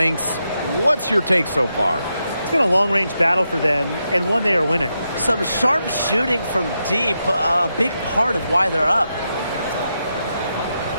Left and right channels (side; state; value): both; inverted; correlation -0.85